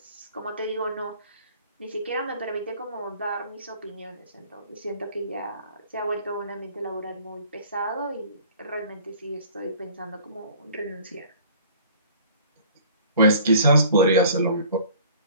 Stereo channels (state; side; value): inverted; both; correlation -0.49